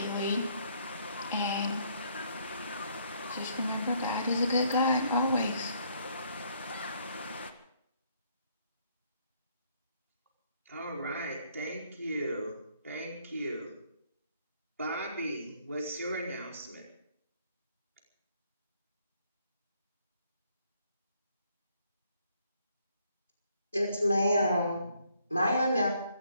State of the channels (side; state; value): both; inverted; correlation -0.67